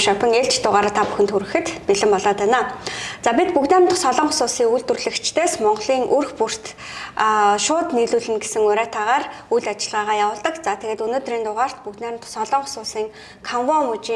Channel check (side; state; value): both; identical; correlation 1.00